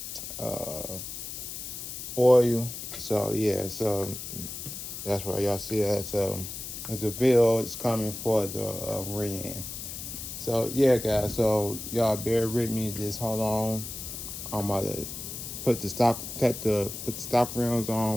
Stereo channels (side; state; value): left; noise; hiss, 8 dB below the sound